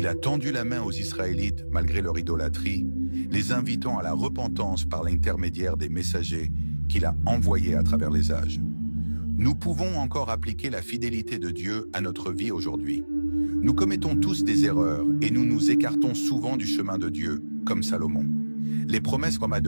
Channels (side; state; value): both; inverted; correlation -1.00